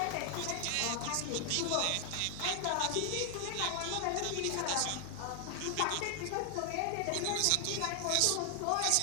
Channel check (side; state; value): both; different; correlation 0.00